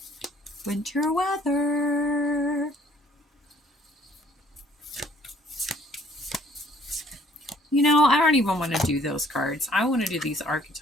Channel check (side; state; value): both; normal; correlation 0.60